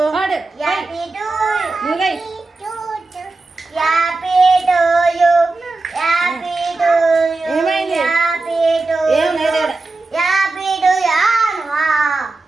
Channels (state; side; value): quieter; left; 3.4 dB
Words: Happy to నువ్వే happy to you happy to you ఏమైంది? హ్యాపీ టు ఏం లేదు. హ్యాపీ టు